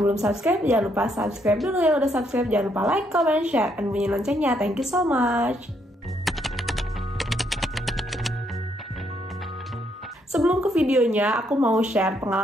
belum subscribe, jangan lupa subscribe dulu. Yang udah subscribe, jangan lupa like, comment, share, dan bunyi loncengnya. Thank you so much. Sebelum ke videonya, aku mau share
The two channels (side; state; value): both; normal; correlation 0.73